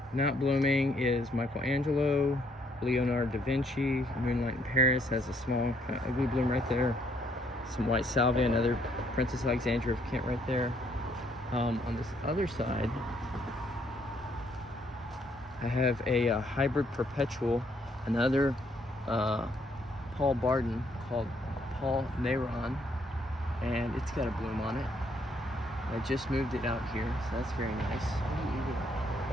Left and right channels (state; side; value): normal; both; correlation 0.69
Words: not blooming is Michelangelo, Leonardo da Vinci. Moonlight in Paris has a small kind of ugly bloom right there. Some white salvia, another Princess Alexandra of Kent right there. On this other side, I have a hybrid perpetual, another Paul Barden called Paul Neyron, and it's got a bloom on it. I just moved it out here, so that's very nice.